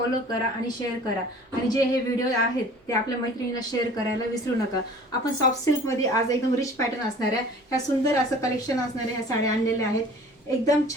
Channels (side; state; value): both; normal; correlation 0.47